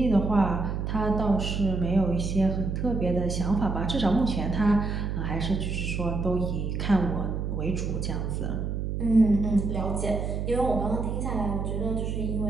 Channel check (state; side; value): noise; right; hum, 2 dB below the sound